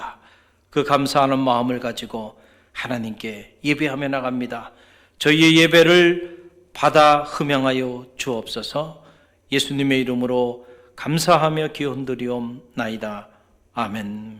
그 감사하는 마음을 가지고 하나님께 예배하며 나갑니다. 저희의 예배를 받아 흠양하여 주옵소서. 예수님의 이름으로 감사하며 기원드리옵나이다.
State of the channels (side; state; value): both; identical; correlation 1.00